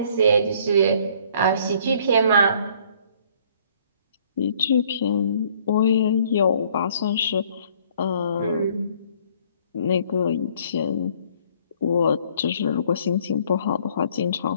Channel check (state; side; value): inverted; both; correlation -0.60